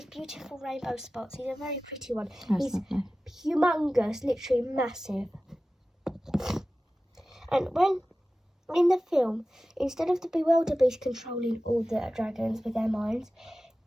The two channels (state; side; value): normal; both; correlation 0.96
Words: beautiful rainbow spots. He's a very pretty one. He's humongous, literally massive. And in the film, instead of the Bewilder Beast controlling all the dragons with their minds,